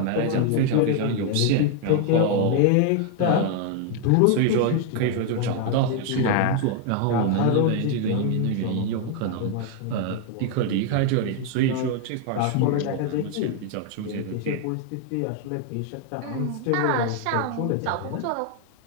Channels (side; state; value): both; different; correlation 0.00